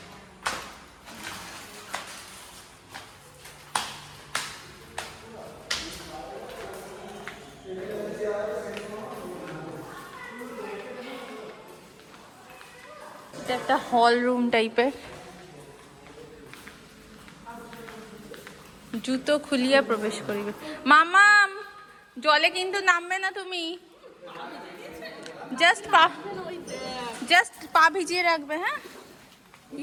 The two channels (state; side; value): identical; both; correlation 1.00